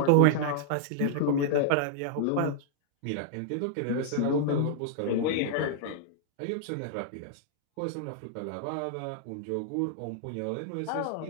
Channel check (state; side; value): different; both; correlation -0.01